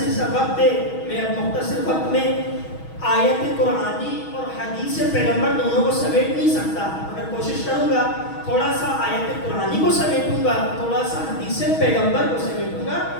سا وقت ہے، میں اب مختصر وقت میں آیت قرآنی اور حدیث پیغمبر دونوں کو سمیٹ نہیں سکتا، مگر کوشش کروں گا تھوڑا سا آیت قرآنی کو سمیٹوں گا، تھوڑا سا حدیث پیغمبر کو سمیٹوں گا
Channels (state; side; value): late; right; 6.3 ms